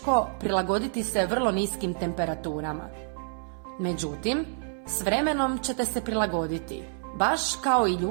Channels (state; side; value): silent; left; 59 dB below the other